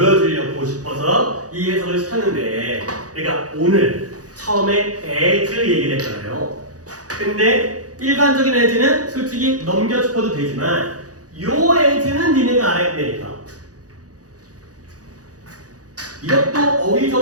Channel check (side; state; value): left; late; 0.67 ms